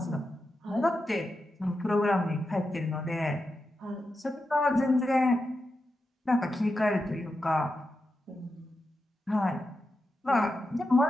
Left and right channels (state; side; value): normal; both; correlation 0.89